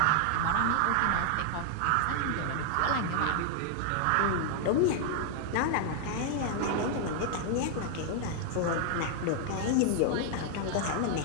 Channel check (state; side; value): different; both; correlation 0.00